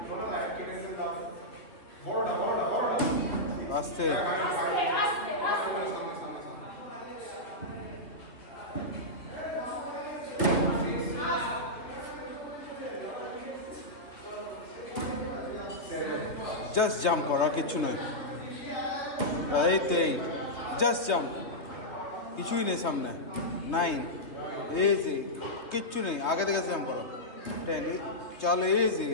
আস্তে জাস্ট জাম্প করা কিছু নয় এই তো এই জাস্ট জাম্প কিছুই নেই সামনে 9 ইজি কিচ্ছু নেই আগে থেকে জাম্প করো 10 চলো ইজি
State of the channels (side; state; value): right; late; 3.3 ms